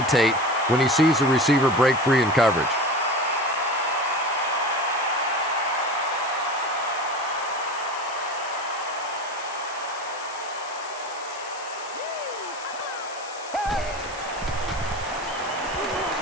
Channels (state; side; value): noise; left; hiss, 15 dB below the sound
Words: when he sees the receiver break free in coverage.